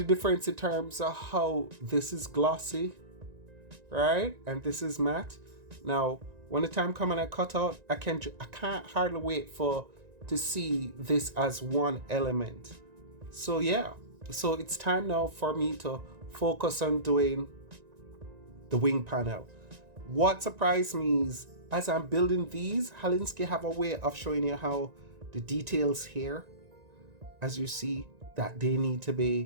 difference in terms of how this is glossy, right? And this is matte. Now, when the time comes and I cut out, I can't hardly wait to see this as one element. So yeah, so it's time now for me to focus on doing the wing panel. What surprised me is, as I'm building these, Halinski have a way of showing you how the details here, as you see, that they need to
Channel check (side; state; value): left; late; 1.9 ms